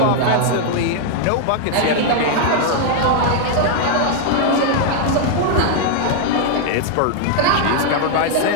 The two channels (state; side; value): different; both; correlation 0.00